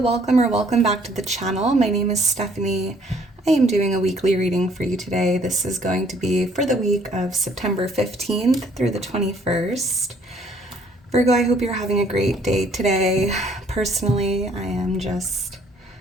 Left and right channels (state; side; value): normal; both; correlation 0.61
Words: back to the channel. My name is Stephanie. I am doing a weekly reading for you today. This is going to be for the week of September 15th through the 21st. Virgo, I hope you're having a great day today. Personally, I am just